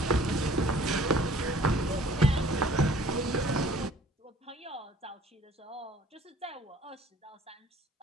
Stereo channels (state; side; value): normal; both; correlation 0.54